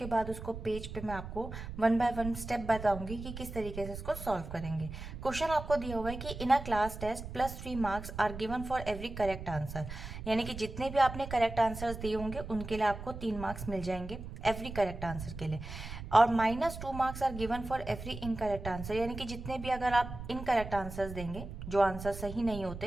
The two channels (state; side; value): noise; right; rumble, 9 dB below the sound